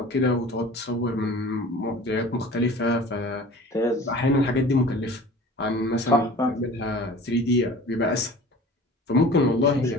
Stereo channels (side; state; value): both; normal; correlation 0.42